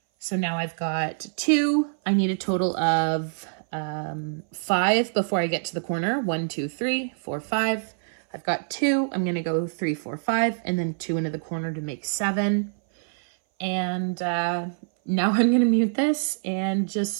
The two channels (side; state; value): left; silent; 59 dB below the other